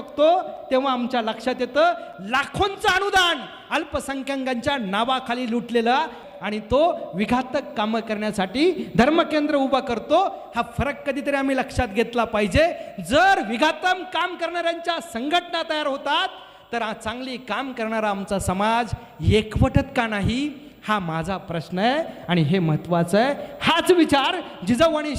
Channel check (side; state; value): both; identical; correlation 1.00